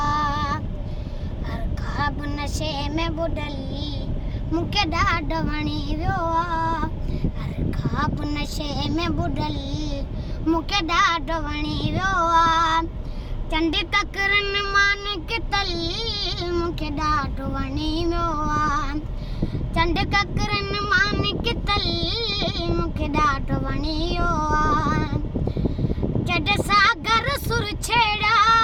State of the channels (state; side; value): identical; both; correlation 1.00